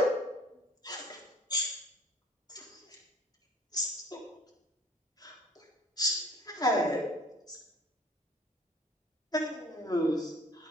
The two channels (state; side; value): normal; both; correlation 0.51